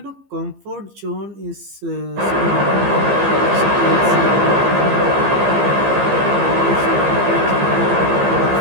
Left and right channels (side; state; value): left; late; 15 ms